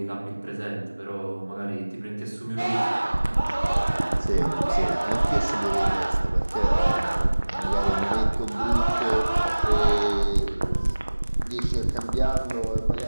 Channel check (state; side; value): inverted; both; correlation -1.00